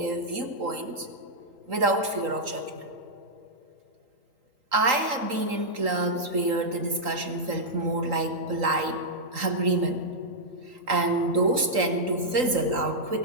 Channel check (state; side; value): late; left; 3.8 ms